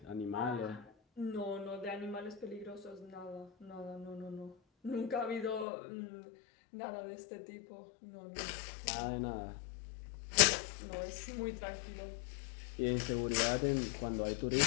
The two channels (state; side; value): drops out; right; at 5.7 s